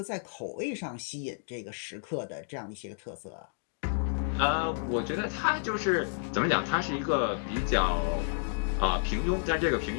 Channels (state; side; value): silent; right; digital silence